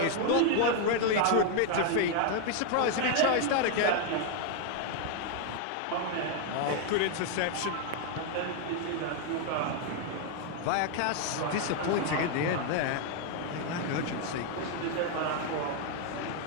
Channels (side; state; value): both; different; correlation 0.00